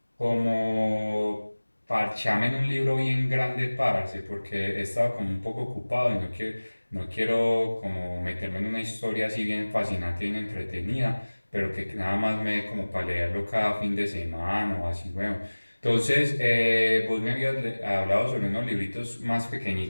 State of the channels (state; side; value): inverted; both; correlation -1.00